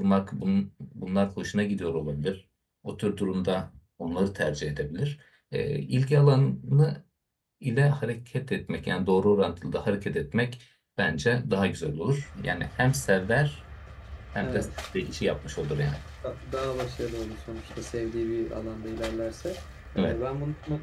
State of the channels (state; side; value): identical; both; correlation 1.00